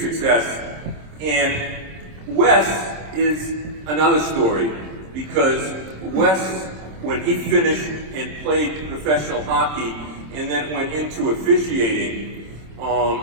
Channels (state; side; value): late; left; 26 ms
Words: and Wes is another story, because Wes, when he finished and played professional hockey and then went into officiating,